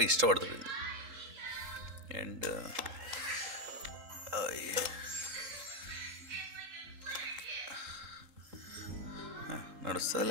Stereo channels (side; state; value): left; late; 3.8 ms